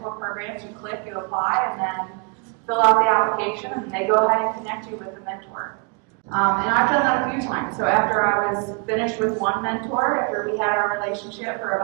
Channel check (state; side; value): quieter; left; 34.2 dB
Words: programs, you click, you apply, and then fill out the application, and they go ahead and connect you with the mentor. And I've done that a few times. So after I was finished with one mentor, after we had our relationship for